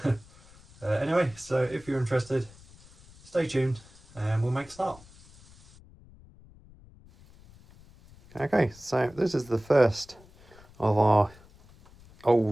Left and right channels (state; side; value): noise; left; rumble, 24 dB below the sound